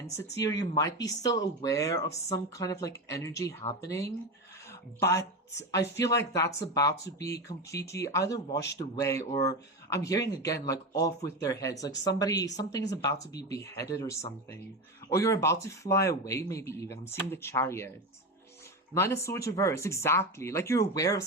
or you might be still aware of some kind of like energy happening, but I feel like that's about to be completely either washed away, or I'm hearing again like off with their heads, like something is about to be beheaded or something, or you're about to fly away, maybe even. I'm seeing the Chariot. 9 of Swords reverse, exactly. Like, you're aware of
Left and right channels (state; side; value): normal; both; correlation 0.19